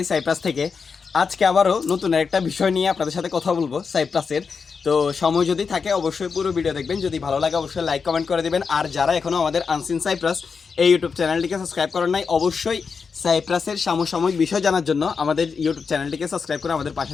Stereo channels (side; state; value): right; quieter; 5.5 dB